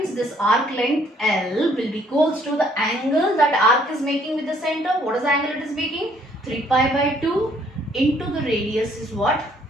this arc length L will be equals to the angle that arc is making with the center. What is the angle it is making? 3 pi by 2 into the radius is what?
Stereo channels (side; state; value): both; normal; correlation 0.64